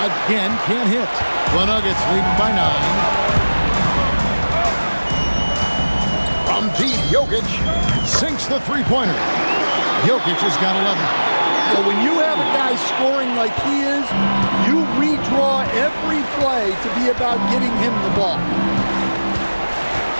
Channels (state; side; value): inverted; both; correlation -1.00